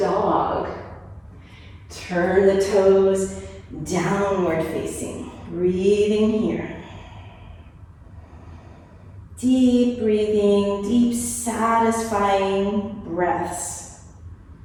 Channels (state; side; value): identical; both; correlation 1.00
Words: Turn the toes downward facing, breathing here. Deep breathing, deep satisfying breaths.